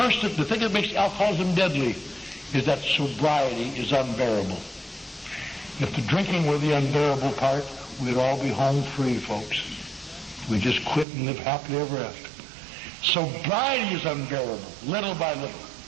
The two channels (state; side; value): drops out; left; at 11.1 s